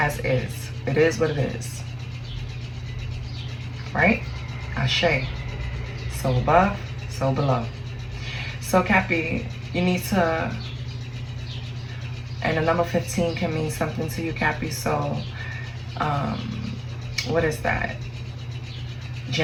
is. It is what it is. Right? Ashe. So above, so below. So Cappy, you need to, and the number 15 can mean something to you, Cappy. So, what is that?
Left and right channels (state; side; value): identical; both; correlation 1.00